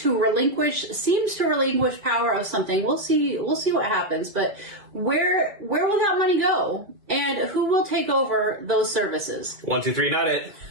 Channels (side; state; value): left; late; 2.1 ms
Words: relinquish power of something. We'll see what happens, but Where will that money go? And who will take over those services? 1, 2, 3, not it.